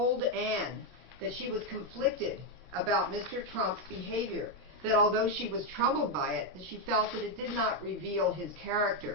Ann that she was conflicted about Mr. Trump's behavior, that although she was troubled by it, that she felt that it did not reveal his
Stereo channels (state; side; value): late; left; 17 ms